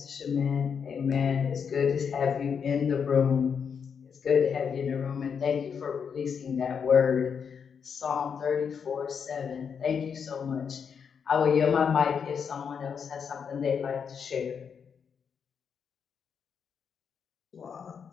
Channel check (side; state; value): right; quieter; 6.7 dB